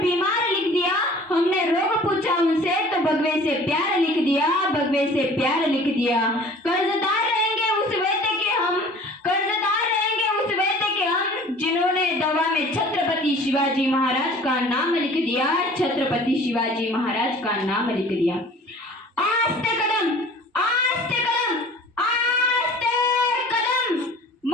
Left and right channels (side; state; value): both; normal; correlation 0.47